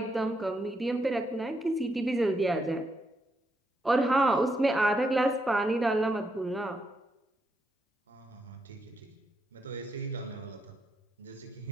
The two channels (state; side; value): normal; both; correlation 0.80